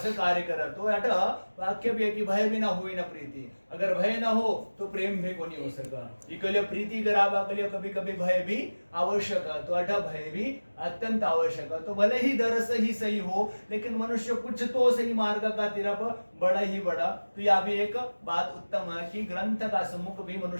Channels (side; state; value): both; inverted; correlation -1.00